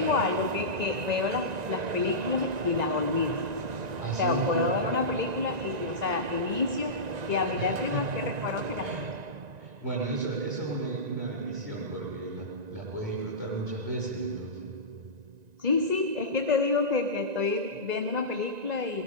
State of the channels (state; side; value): late; left; 1.9 ms